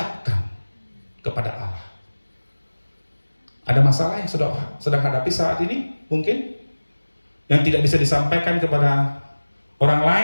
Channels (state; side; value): inverted; both; correlation -1.00